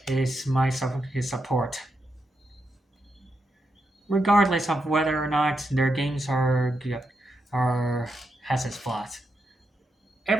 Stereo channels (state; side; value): normal; both; correlation 0.84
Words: his support, regardless of whether or not their games are has its flaws.